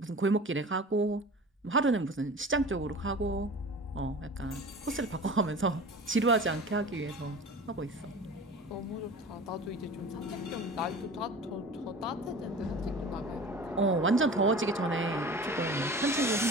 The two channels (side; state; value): both; normal; correlation 0.38